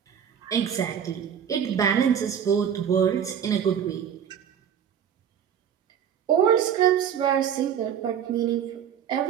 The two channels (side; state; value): left; quieter; 8.6 dB